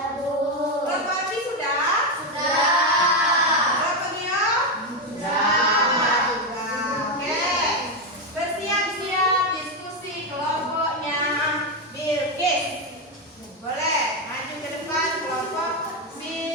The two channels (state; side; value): normal; both; correlation 0.08